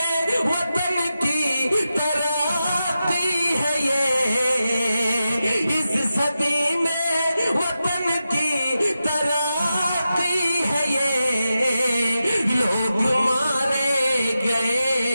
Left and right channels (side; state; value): both; inverted; correlation -0.90